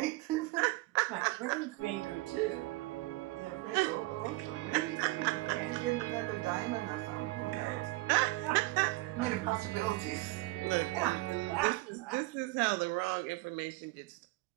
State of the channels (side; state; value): left; quieter; 21.0 dB